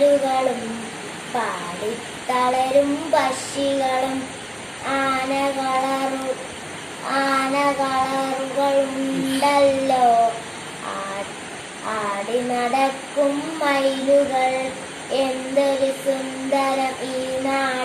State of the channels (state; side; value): identical; both; correlation 1.00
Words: പാടി തളരും പക്ഷികളും. ആനകളറുകളുണ്ടല്ലോ, ആടി നടക്കും മയിലുകൾ. എന്തൊരു സുന്ദരം ഈ